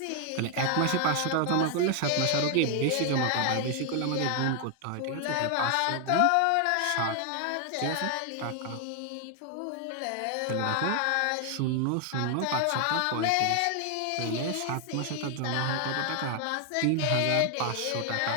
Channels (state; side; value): different; both; correlation 0.00